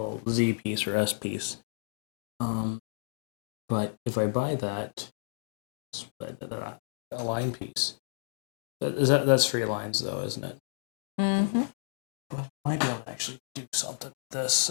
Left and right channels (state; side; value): silent; right; digital silence